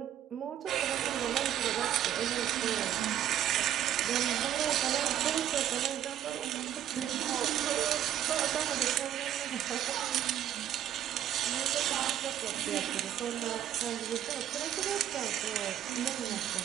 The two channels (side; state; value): left; quieter; 11.0 dB